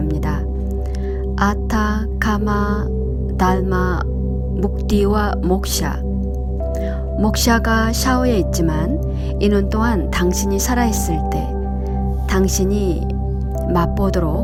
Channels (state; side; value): identical; both; correlation 1.00